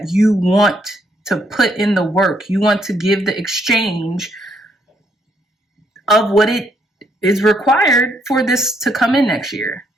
you want to put in the work. You want to give the exchange of what it is required for this to come in next year.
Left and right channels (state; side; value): normal; both; correlation 0.72